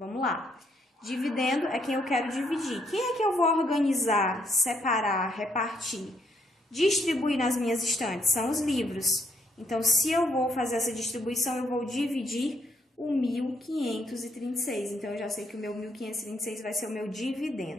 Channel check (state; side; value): normal; both; correlation 0.72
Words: lá. Dividendo é quem eu quero dividir. Quem é que eu vou organizar, separar, repartir, distribuir nas minhas estantes? São os livros. Então, se eu vou fazer essa distribuição, eu vou dividir o 1.536. Então, eu já sei que o meu 1.536 vai ser o meu